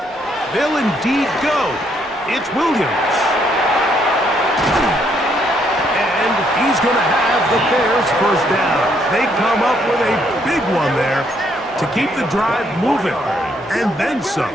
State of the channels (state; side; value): normal; both; correlation 0.71